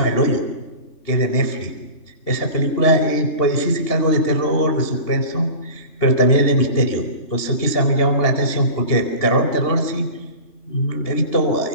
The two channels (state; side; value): late; right; 2.8 ms